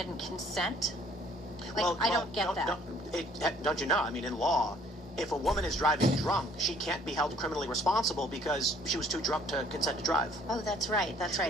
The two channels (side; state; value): both; normal; correlation 0.58